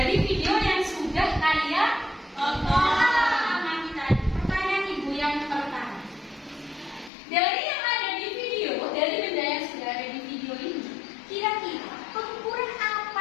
video yang sudah kalian amati tadi. Pertanyaan Ibu yang pertama. Dari yang ada di video, dari benda yang sudah ada di video ini, kira-kira pengukuran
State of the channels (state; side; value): drops out; right; at 7.1 s